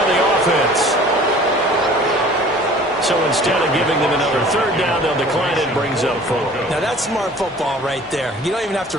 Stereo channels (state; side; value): normal; both; correlation 0.48